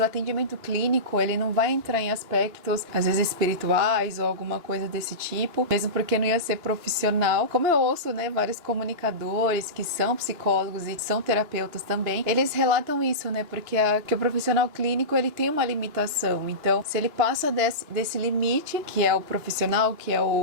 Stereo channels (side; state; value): left; late; 3.0 ms